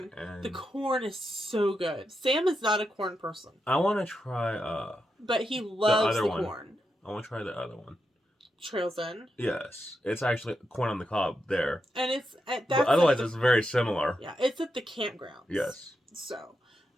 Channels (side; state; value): both; normal; correlation 0.86